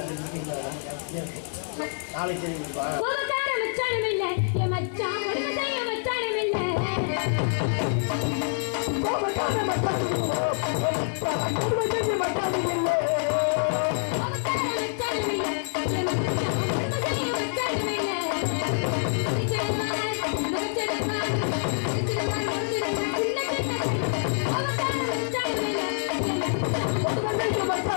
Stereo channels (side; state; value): right; silent; 61 dB below the other